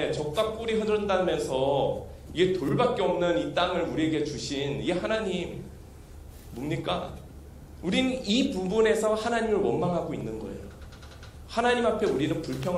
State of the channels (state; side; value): identical; both; correlation 1.00